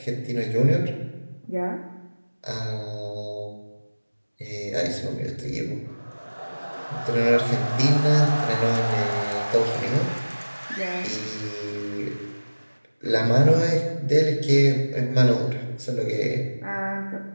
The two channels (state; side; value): inverted; both; correlation -1.00